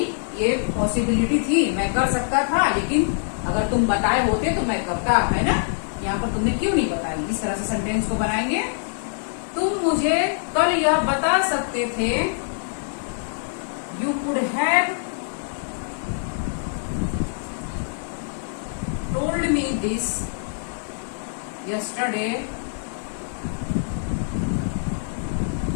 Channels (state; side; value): silent; right; digital silence